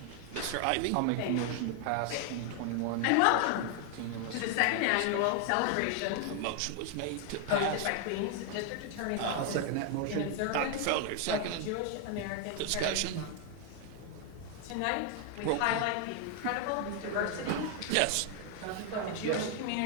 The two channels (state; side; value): different; both; correlation 0.00